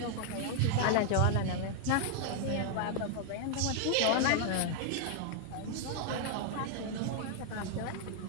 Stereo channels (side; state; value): both; different; correlation 0.00